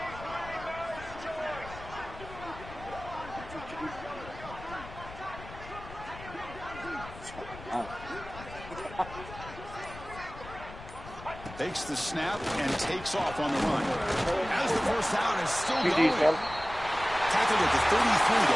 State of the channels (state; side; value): noise; left; rumble, 14 dB below the sound